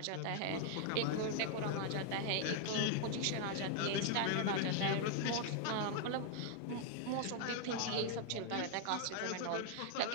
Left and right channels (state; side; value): different; both; correlation 0.00